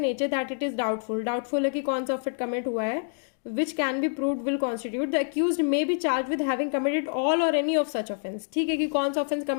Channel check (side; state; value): right; silent; digital silence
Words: that it is doubtful, doubtful है कि कौन सा ऑफेंस कमिट हुआ है, which can be proved will constitute the accused may be charged with having committed all or any of such offense, ठीक है, कि कौन सा ऑफेंस